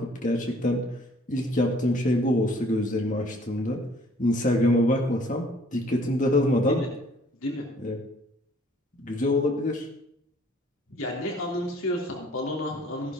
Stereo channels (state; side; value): normal; both; correlation 0.58